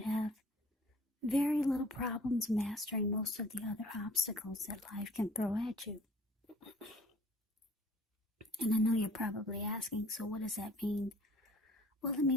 have very little problems mastering most of the other obstacles that life can throw at you. And I know you're probably asking, so what does that mean? Well, it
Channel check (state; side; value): normal; both; correlation 0.53